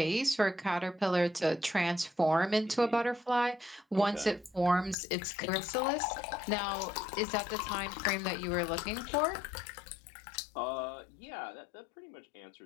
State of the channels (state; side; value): drops out; right; at 5.0 s